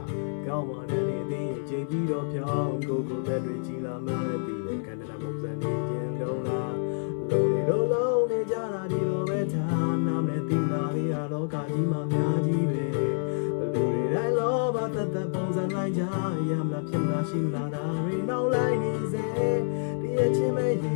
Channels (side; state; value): right; silent; 56 dB below the other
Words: ကောင်းမှလည်းနေသေးချိန်ပြီးတော့ဖြောင်းကိုလက်တွေကြီးလာမှန်းပြီးတဲ့ခန္ဓာပုံစံနေခြင်းလုံးလားလုံးနေလုံးနေကြတာဒီလိုပဲထားနာမည်တင်လာလေးရလောကကြီးမှာများကြီးပဲလူတွေတိုင်းလောဘသက်ပုံစံလိုက်ကြရမလားဖြစ်လာရှိလာတာတွေနောက်လိုက်နေစေဒီအချင်းမဲရ